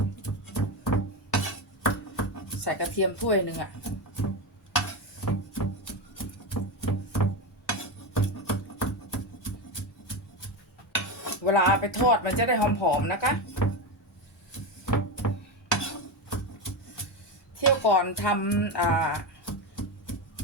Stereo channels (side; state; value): both; normal; correlation 0.15